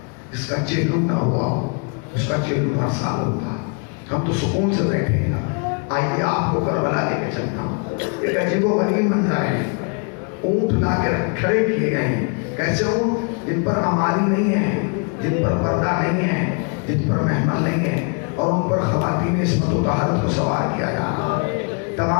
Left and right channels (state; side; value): quieter; right; 36.8 dB